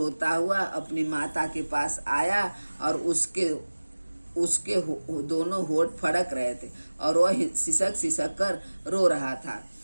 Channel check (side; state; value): both; inverted; correlation -1.00